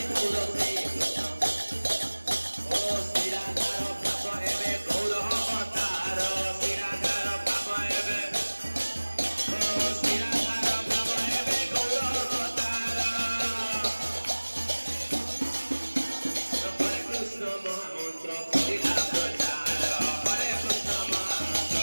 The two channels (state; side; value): inverted; both; correlation -1.00